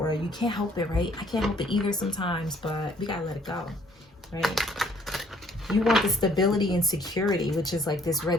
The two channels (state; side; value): normal; both; correlation 0.61